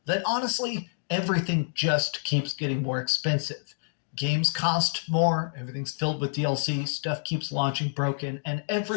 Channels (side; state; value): right; silent; digital silence